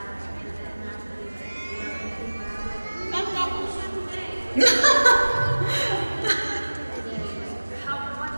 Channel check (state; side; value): inverted; both; correlation -1.00